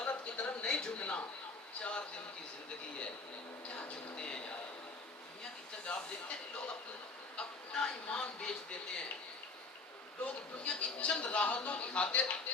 کی طرف نہیں جھکنا. 4 دن کی زندگی ہے، کیا جھکتے ہیں یار. دنیا کی طرف آپ دیکھتے ہیں لوگ اپنا ایمان بیچ دیتے ہیں. لوگ دنیا کی چند راحتوں کی خاطر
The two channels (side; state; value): right; quieter; 3.7 dB